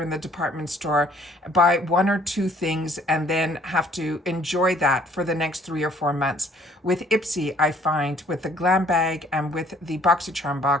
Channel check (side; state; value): both; normal; correlation 0.60